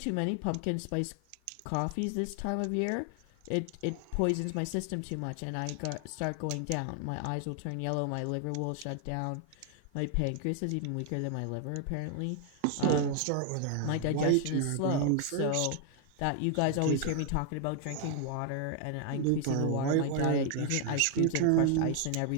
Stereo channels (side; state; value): both; different; correlation 0.00